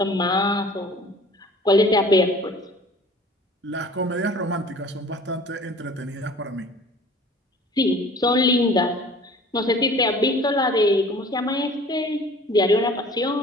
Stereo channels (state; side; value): normal; both; correlation 0.47